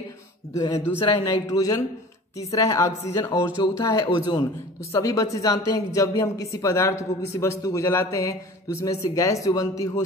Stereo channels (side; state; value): both; normal; correlation 0.41